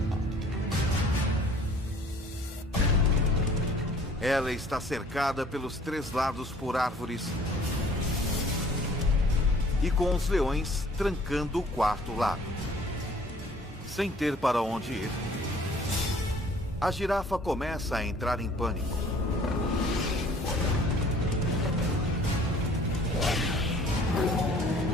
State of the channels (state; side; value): normal; both; correlation 0.54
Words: Ela está cercada pelos 3 lados por árvores e com os leões trancando o 4º lado. Sem ter para onde ir, a girafa começa a entrar em pânico.